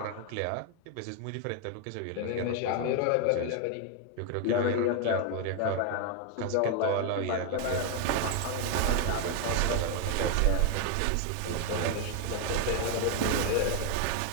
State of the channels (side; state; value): both; different; correlation 0.01